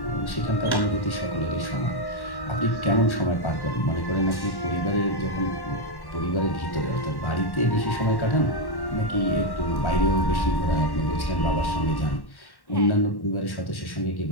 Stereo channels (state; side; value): late; right; 1.1 ms